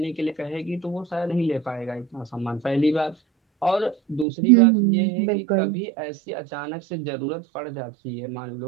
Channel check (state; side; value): drops out; left; at 4.2 s